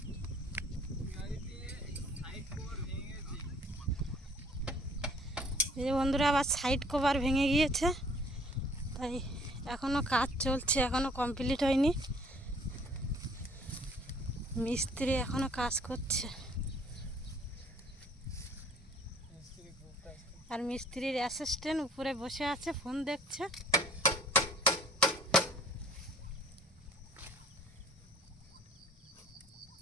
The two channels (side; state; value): both; normal; correlation 0.56